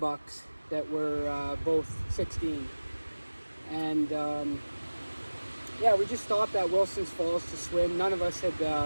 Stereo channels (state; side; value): inverted; both; correlation -1.00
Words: that were both 16. And yeah, we just stopped at Wilson's Falls to swim. None of us had